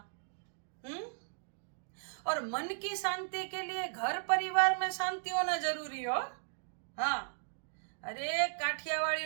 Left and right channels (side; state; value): left; silent; digital silence